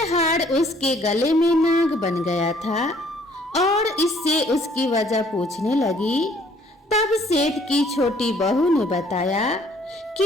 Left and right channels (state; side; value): normal; both; correlation 0.61